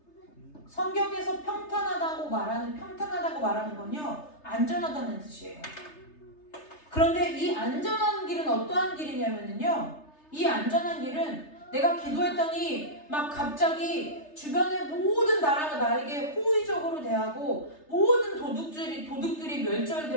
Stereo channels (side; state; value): right; late; 3.3 ms